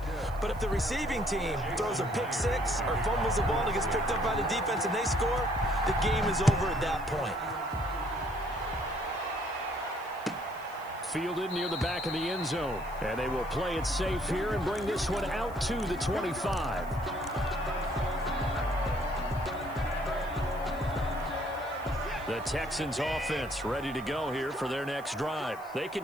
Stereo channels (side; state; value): left; noise; hiss, 24 dB below the sound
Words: But if the receiving team throws a pick six or fumbles the ball and gets picked up by the defense and they score, the game is over at that point. Fielded near the back of the end zone. And they will play it safe here and bring this one out to the 25. The Texans offense ready to go here for their next drive. They